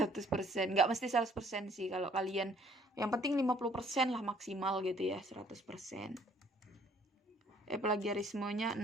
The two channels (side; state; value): both; normal; correlation 0.60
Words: Nggak mesti 100% sih kalau kalian. Yang penting 50% lah maksimal gitu ya, 100%. Plagiarismenya